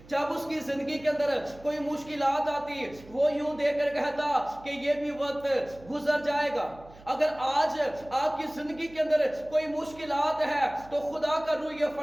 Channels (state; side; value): noise; right; hum, 22 dB below the sound